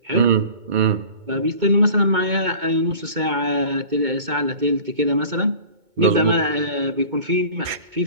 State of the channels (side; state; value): left; late; 2.2 ms